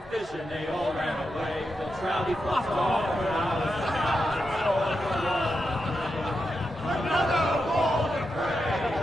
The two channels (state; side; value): normal; both; correlation 0.87